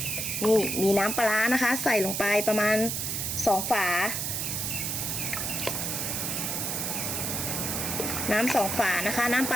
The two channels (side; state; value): right; noise; hiss, 1 dB below the sound